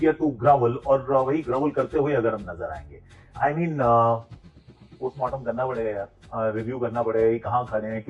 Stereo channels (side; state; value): both; identical; correlation 1.00